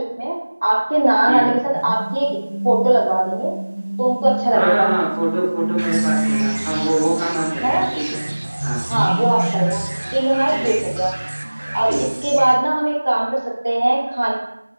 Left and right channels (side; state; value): both; inverted; correlation -1.00